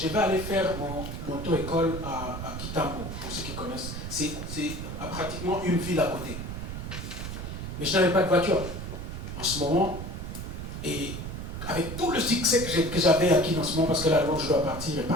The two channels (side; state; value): right; noise; rumble, 7 dB below the sound